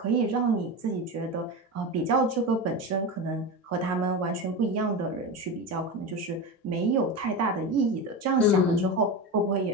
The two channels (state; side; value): normal; both; correlation 0.22